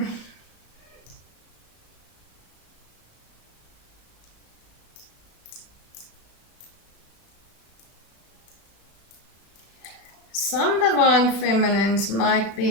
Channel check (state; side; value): late; right; 36 ms